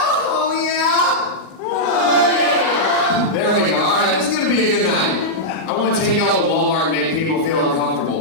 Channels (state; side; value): late; right; 38 ms